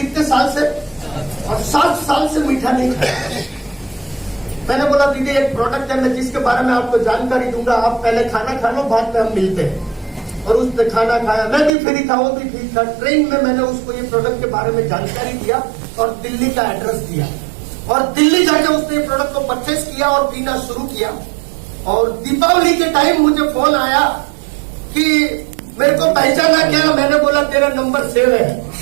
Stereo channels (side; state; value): left; drops out; at 11.7 s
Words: साल से? और 7 साल से मीठा नहीं खाया। मैंने बोला दीदी एक प्रोडक्ट है, मैं जिसके बारे में आपको जानकारी दूंगा, आप पहले खाना खा लो, बाद में हम मिलते हैं। और उसने खाना खाया, मैं भी फ्री था, वो भी फ्री था। ट्रेन में मैंने उसको ये प्रोडक्ट के बारे में जानकारी दिया और दिल्ली का एड्रेस दिया, और दिल्ली जाके उसने प्रोडक्ट को परचेस किया और पीना शुरू किया। और दीपावली के टाइम मुझे फोन आया कि मेरे को पहचाना क्या? मैंने बोला तेरा नंबर सेव है।